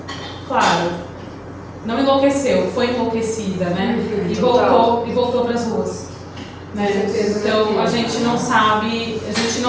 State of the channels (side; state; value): both; identical; correlation 1.00